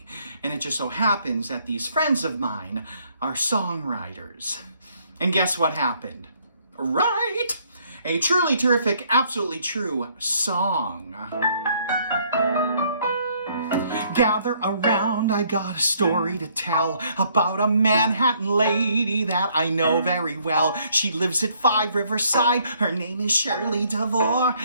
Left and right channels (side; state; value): both; inverted; correlation -0.66